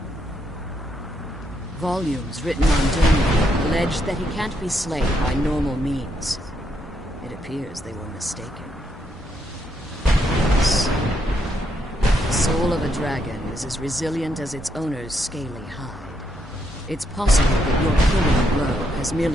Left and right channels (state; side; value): normal; both; correlation 0.77